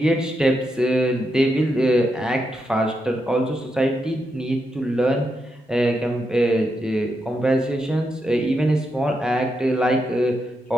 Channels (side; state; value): both; normal; correlation 0.84